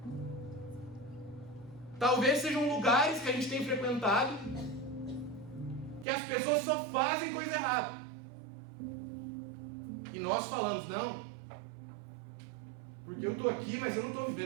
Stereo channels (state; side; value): drops out; left; at 6.1 s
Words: Talvez sejam lugares que a gente tem frequentado, que as pessoas só fazem coisa errada. E nós falamos, não, porque eu estou aqui, mas eu não estou